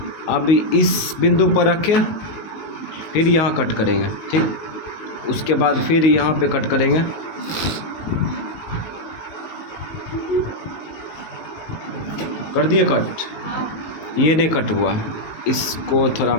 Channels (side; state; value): right; late; 19 ms